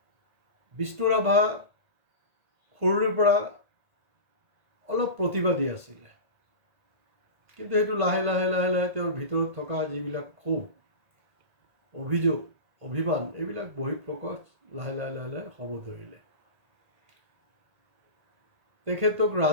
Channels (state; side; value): late; left; 2.0 ms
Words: বিষ্ণু ৰাভা সৰুৰে পৰা অলপ প্ৰতিবাদী আছিলে, কিন্তু সেইটো লাহে লাহে তেওঁৰ ভিতৰত থকা যিবিলাক ক্ষোভ, অভিযোগ, অভিমান, এইবিলাক বহিঃপ্ৰকাশ লাহে লাহে হ'ব ধৰিলে। তেখেতক